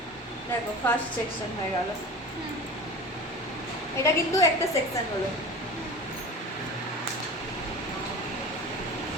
দেখো ফার্স্ট সেকশন হয়ে গেল, এটা কিন্তু একটা সেকশন হলো।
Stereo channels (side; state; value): both; normal; correlation 0.34